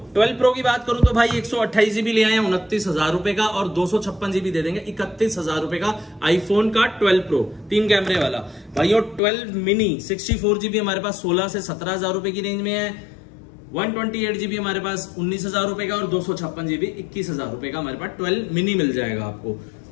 प्रो की बात करूं तो भाई 128 GB ले आए हैं 29,000 रुपए का और 256 GB दे देंगे 31,000 रुपए का। आईफोन का 12 प्रो 3 कैमरे वाला भाइयों। 12 मिनी 64 GB हमारे पास 16 से 17,000 रुपए की रेंज में है। 128 GB हमारे पास 19,000 रुपए का और 256 GB 21,000 रुपए का हमारे पास 12 मिनी मिल जाएगा आपको।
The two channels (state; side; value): drops out; right; at 9.2 s